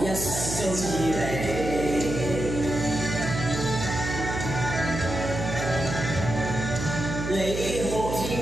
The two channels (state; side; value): noise; right; hum, 5 dB below the sound